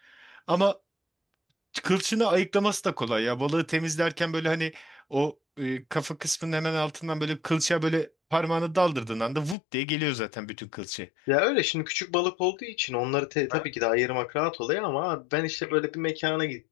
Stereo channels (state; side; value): drops out; right; at 9.6 s